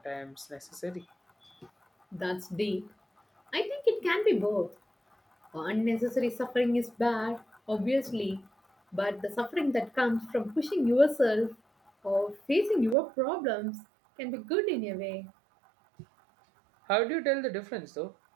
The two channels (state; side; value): drops out; left; at 13.0 s